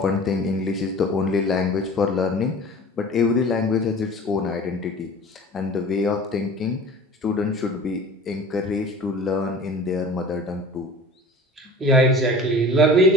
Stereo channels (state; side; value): normal; both; correlation 0.41